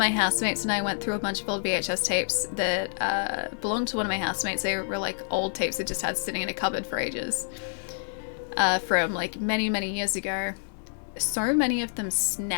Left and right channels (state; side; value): silent; right; digital silence